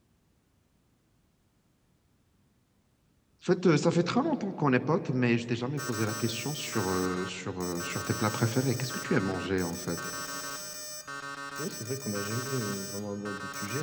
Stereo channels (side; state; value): both; identical; correlation 1.00